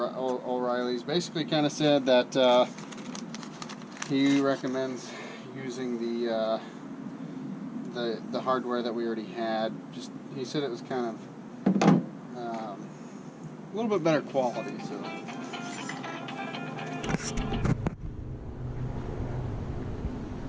basically kind of said that he recommends using the hardware that we already had. Just he said it was kind of a little bit better quality. So.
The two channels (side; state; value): both; identical; correlation 1.00